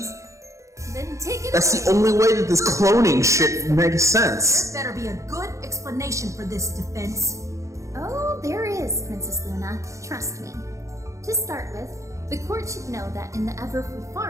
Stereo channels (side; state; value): left; late; 0.15 ms